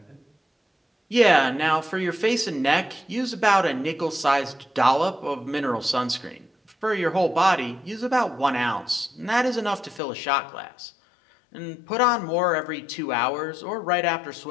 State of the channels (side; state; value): right; drops out; at 10.0 s